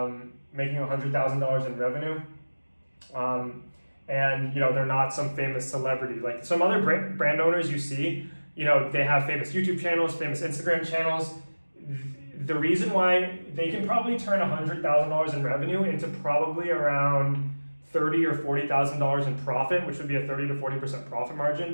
making $100,000 in revenue. And they're not some famous celebrity. Like some other brand owners you see, they have famous YouTube channels, famous Instagram channels. The reason why they can probably turn $100,000 in revenue into probably around $30,000 or $40,000 in profit, which would be a 30 to 40% profit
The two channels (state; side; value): inverted; both; correlation -1.00